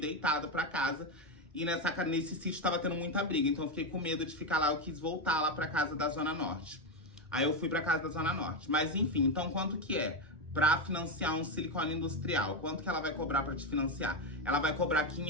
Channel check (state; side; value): normal; both; correlation 0.09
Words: pra casa. E nesse sítio tava tendo muita briga, então eu fiquei com medo de ficar lá, eu quis voltar lá pra casa da Zona Norte. Aí eu fui pra casa da Zona Norte. Mas enfim, então quanto que é? Pra financiar um silicone industrial, quanto que ela vai cobrar pra te financiar? Ela vai cobrar